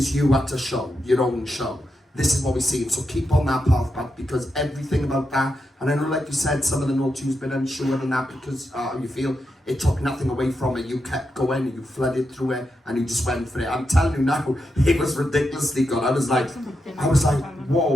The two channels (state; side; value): normal; both; correlation 0.85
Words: you at a show, your own show. This is what we're seeing. So keep on that path, Pat, because everything about that, and I know, like you said, some of the notes you've been unsure and that, because you feel it took nothing away from it. You kept going and you flooded through it and you just went for it. I'm telling you now, it was ridiculously good. I was like,